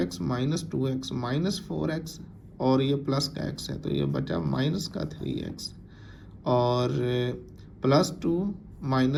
-2x -4x और ये प्लस का x है तो ये बचा माइनस का 3x और +2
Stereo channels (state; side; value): identical; both; correlation 1.00